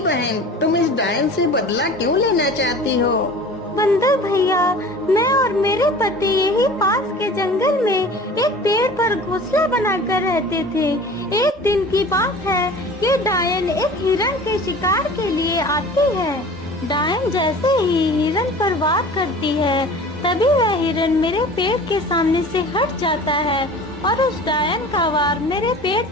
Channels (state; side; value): normal; both; correlation 0.41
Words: बहन, तुम इस डायन से बदला क्यों लेना चाहती हो। बंदर भैया, मैं और मेरे पति यही पास के जंगल में एक पेड़ पर घोंसला बनाकर रहते थे। एक दिन की बात है कि डायन एक हिरन के शिकार के लिए आती है। डायन जैसे ही हिरन पर वार करती है, तभी वह हिरन मेरे पेड़ के सामने से हट जाता है और उस डायन का वार मेरे पेड़